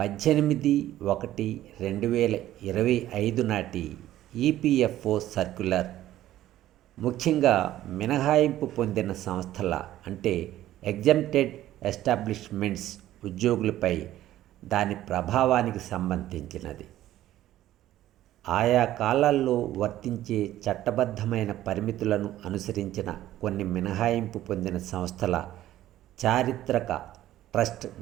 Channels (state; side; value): quieter; left; 13.7 dB